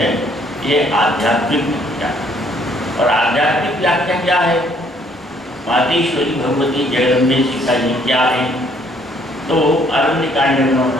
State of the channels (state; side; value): normal; both; correlation 0.64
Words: ये आध्यात्मिक व्याख्या। और आध्यात्मिक व्याख्या क्या है? मातेश्वरी भगवती जगदम्बे सीता जी क्या है? तो अरण्यकांड में